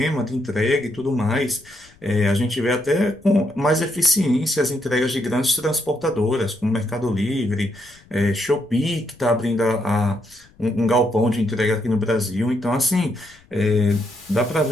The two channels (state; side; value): noise; left; rumble, 28 dB below the sound